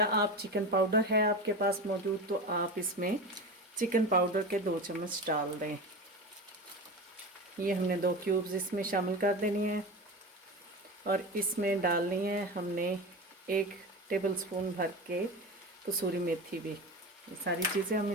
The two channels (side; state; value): both; normal; correlation 0.26